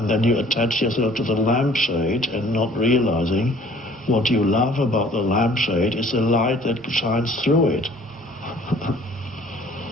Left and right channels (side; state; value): both; normal; correlation 0.54